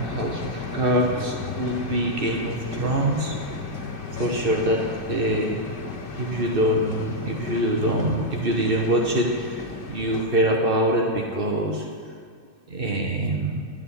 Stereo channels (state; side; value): late; left; 2.6 ms